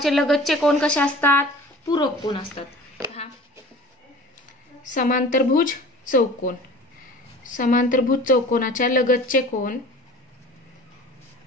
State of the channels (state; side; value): normal; both; correlation 0.43